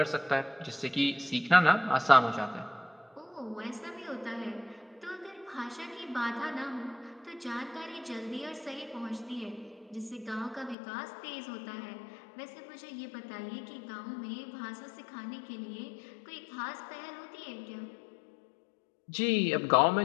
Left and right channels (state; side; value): drops out; right; at 10.8 s